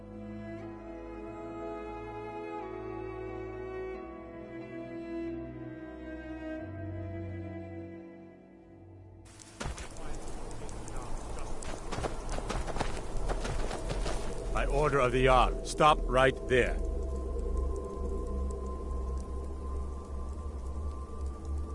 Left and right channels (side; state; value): both; identical; correlation 1.00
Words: By order of the Jarl, stop right there.